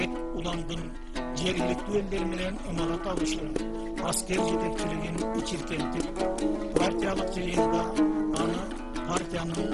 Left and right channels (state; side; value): identical; both; correlation 1.00